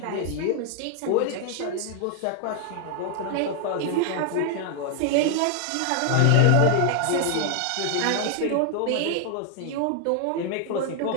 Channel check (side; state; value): both; different; correlation 0.00